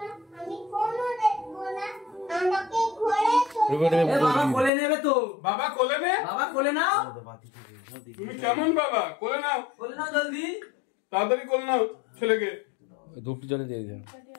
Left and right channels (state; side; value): drops out; right; at 4.7 s